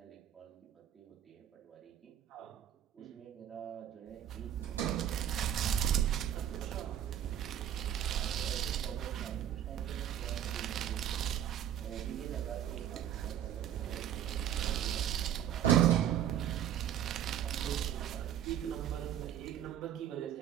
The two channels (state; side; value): quieter; left; 10.5 dB